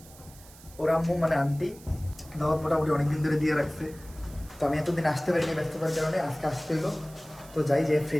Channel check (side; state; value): right; noise; hiss, 22 dB below the sound